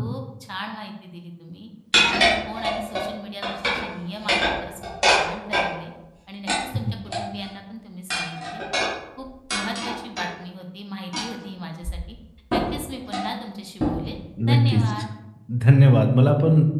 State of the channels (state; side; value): identical; both; correlation 1.00